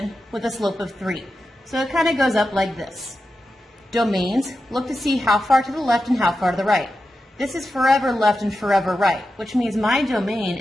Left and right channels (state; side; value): normal; both; correlation 0.90